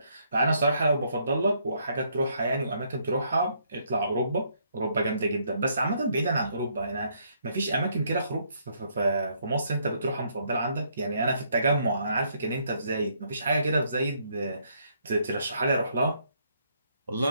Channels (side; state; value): both; inverted; correlation -0.71